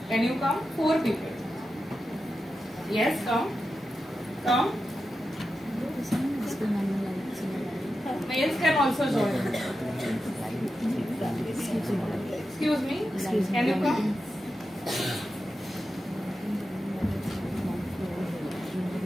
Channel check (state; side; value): normal; both; correlation 0.90